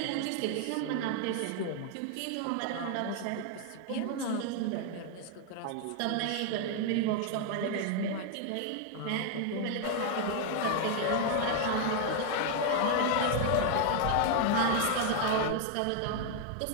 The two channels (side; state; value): both; different; correlation 0.00